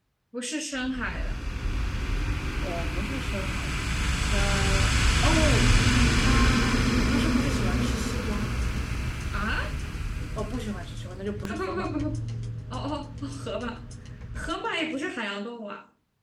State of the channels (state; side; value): identical; both; correlation 1.00